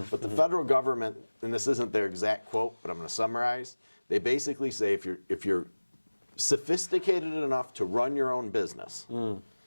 But the federal government, and this isn't their exact quote, but I'm going to summarize, they basically say if you're sophisticated enough to run your own business,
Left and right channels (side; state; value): both; inverted; correlation -1.00